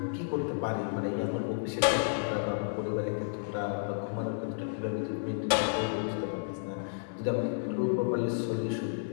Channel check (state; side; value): silent; right; 57 dB below the other